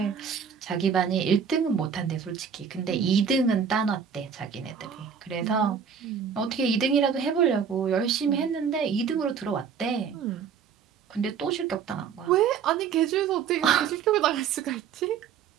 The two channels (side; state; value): left; quieter; 6.9 dB